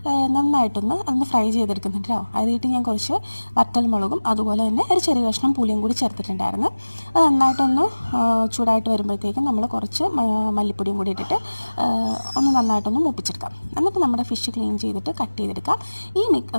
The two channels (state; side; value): inverted; both; correlation -1.00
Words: നന്നായിട്ടൊന്ന് ഫ്രൈ ചെയ്തെടുക്കുന്നുണ്ട് കേട്ടോ. അതിലിട്ട് ഞാൻ കുറച്ച് വറ്റൽമുളകും അതുപോലെ തന്നെ ഒരു ചെറിയ കഷ്ണം പുളിയും കൂടി ചേർത്തിട്ടുണ്ടായിരുന്നു. അത് നന്നായിട്ടൊന്ന് ചൂടായിട്ട് വരുമ്പോഴത്തേക്കും നമ്മൾ കുറച്ച് മല്ലിപ്പൊടിയും കൂടി ഇട്ടിട്ട് ഒന്ന് നന്നായിട്ടൊന്ന് മൂപ്പിച്ചെടുക്കാം. എന്നിട്ട് നമ്മുടെ ഫിഷ് ക്ലീൻ ചെയ്തിട്ട് കട്ട് ചെയ്തെടുക്കാം.